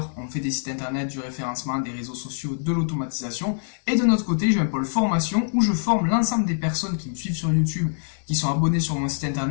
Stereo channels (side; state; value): right; silent; 62 dB below the other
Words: On fait des sites internet, du référencement, des réseaux sociaux, de l'automatisation. Et de notre côté, j'ai un pôle formation où je forme l'ensemble des personnes qui me suivent sur YouTube, qui sont abonnées sur mon site